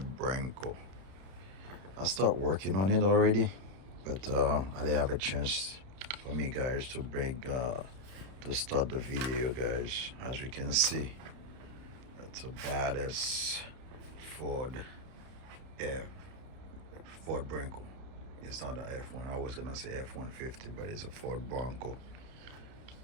Bronco. I start working on it already, but I didn't have a chance for me, guys, to start the video, guys. As you can see, that's a badass Ford F. Ford Bronco. It's not an F1. I was gonna say F-150, but it's a Ford Bronco.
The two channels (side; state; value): left; late; 31 ms